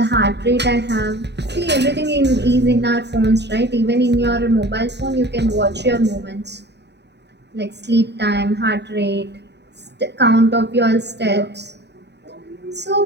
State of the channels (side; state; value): left; late; 0.50 ms